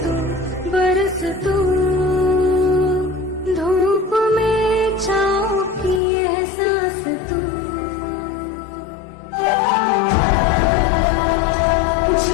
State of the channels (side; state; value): right; drops out; at 6.0 s